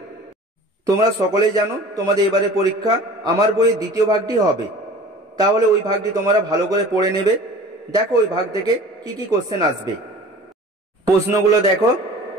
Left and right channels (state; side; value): normal; both; correlation 0.42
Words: তোমরা সকলেই জানো তোমাদের এবারে পরীক্ষা আমার বইয়ের দ্বিতীয় ভাগটি হবে, তাহলে ওই ভাগটি তোমরা ভালো করে পড়ে নেবে। দেখো ওই ভাগ থেকে কি কি কোশ্চেন আসবে। প্রশ্নগুলো দেখো।